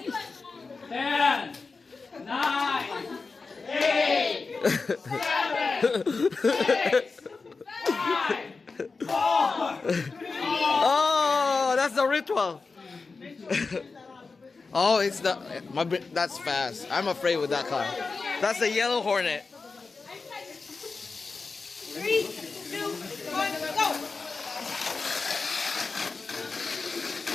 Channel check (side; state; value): right; quieter; 4.3 dB